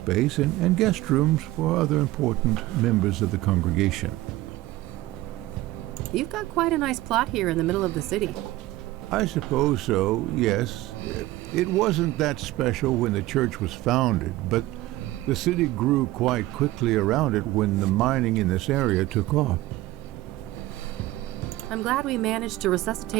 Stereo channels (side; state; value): left; quieter; 17.2 dB